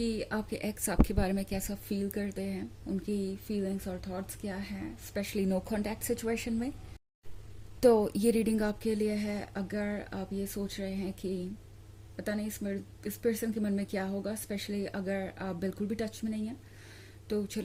आपके एक्स आपके बारे में कैसा फील करते हैं, उनकी फीलिंग्स और थॉट्स क्या हैं, स्पेशली नो कांटेक्ट सिचुएशन में। तो ये रीडिंग आपके लिए है अगर आप ये सोच रहे हैं कि पता नहीं इस पर्सन के मन में क्या होगा, स्पेशली अगर आप बिल्कुल भी टच में नहीं हैं। तो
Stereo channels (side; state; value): both; identical; correlation 1.00